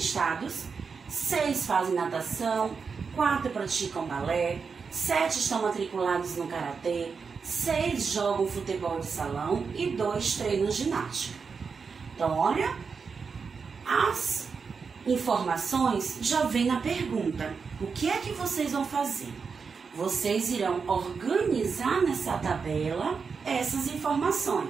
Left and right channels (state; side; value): quieter; left; 5.4 dB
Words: 6 fazem natação, 4 praticam balé, 7 estão matriculados no karatê, 6 jogam futebol de salão e 2 treinam ginástica. Então, olha, as informações já vêm na pergunta. O que é que vocês vão fazer? Vocês irão organizar nessa tabela essas